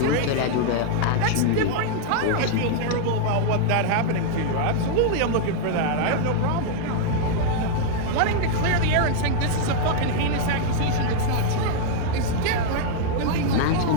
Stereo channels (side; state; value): both; different; correlation 0.00